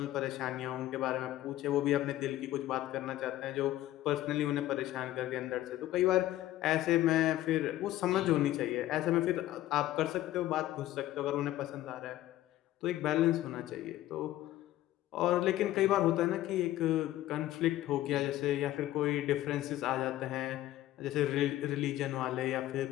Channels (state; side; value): quieter; right; 14.6 dB